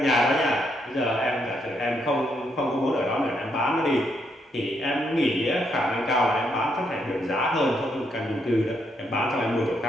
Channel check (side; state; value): both; normal; correlation 0.76